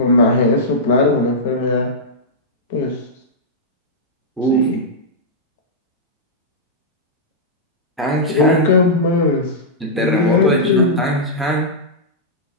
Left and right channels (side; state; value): both; normal; correlation -0.11